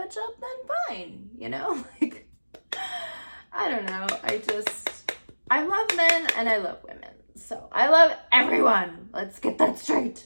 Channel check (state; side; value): inverted; both; correlation -1.00